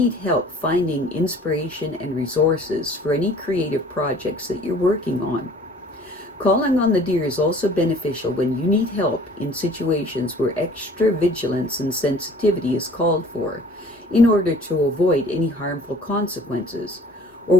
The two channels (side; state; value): both; normal; correlation 0.51